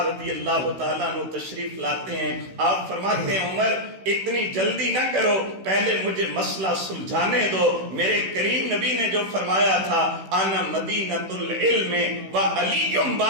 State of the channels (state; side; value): late; left; 16 ms